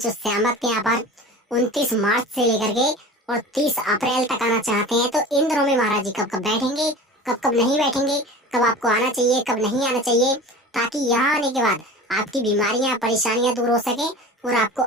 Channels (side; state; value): both; normal; correlation 0.36